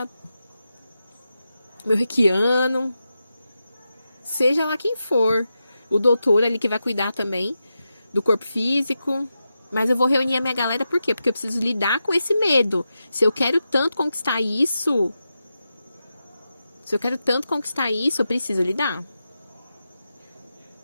meu reikiano, seja lá quem for, o doutor ali que vai cuidar também do corpo físico. Mas eu vou reunir a minha galera, por quê? Porque eu preciso lidar com esse medo. Se eu quero tanto conquistar isso, eu preciso lidar.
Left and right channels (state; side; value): inverted; both; correlation -0.89